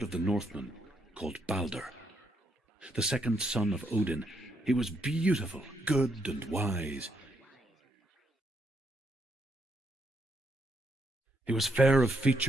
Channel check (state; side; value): normal; both; correlation 0.76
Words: of the Northmen called Balder. The second son of Odin, he was beautiful, good, and wise. He was fair of